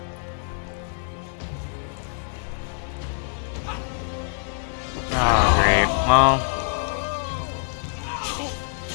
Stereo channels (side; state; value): right; silent; digital silence